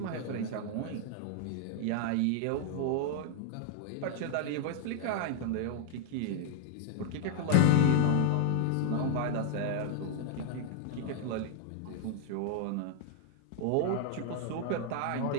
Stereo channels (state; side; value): different; both; correlation 0.00